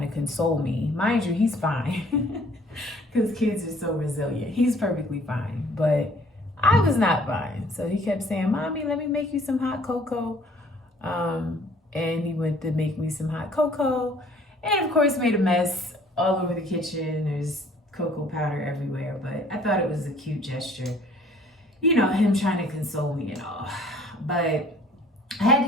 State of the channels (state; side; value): normal; both; correlation 0.56